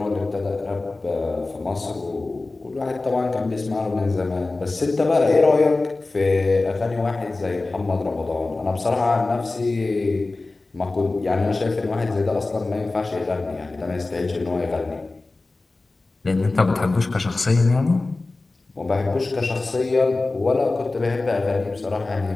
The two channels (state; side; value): quieter; right; 3.3 dB